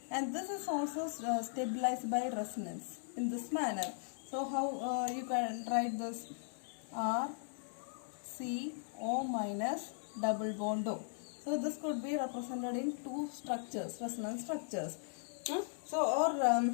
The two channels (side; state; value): right; silent; digital silence